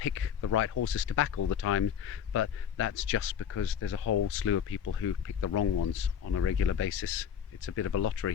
the right horses to back all the time, but that's just because there's a whole slew of people who pick the wrong ones on a regular basis. It's a bit of a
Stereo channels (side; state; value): right; quieter; 8.3 dB